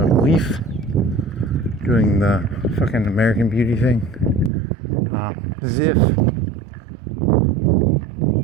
leaf doing the fucking American Beauty thing. Ziff,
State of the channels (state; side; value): drops out; left; at 4.5 s